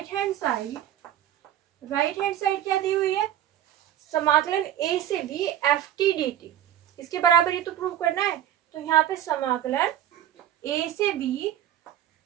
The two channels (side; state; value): left; quieter; 11.5 dB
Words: हैंड साइड क्या दी हुई है, समाकलन a से b F T D T, इसके बराबर ही तो प्रूव करना है। तो यहाँ पे समाकलन a से b